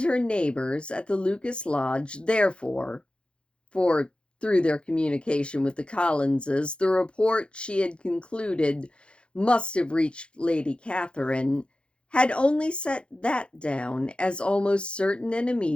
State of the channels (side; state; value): right; late; 0.056 ms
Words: her neighbors at the Lucas Lodge, therefore, for through their communication with the Collinses, the report she had concluded must have reached Lady Catherine, had only set that down as almost certain and